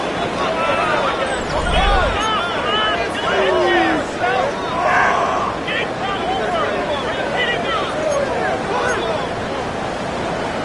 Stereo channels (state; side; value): identical; both; correlation 1.00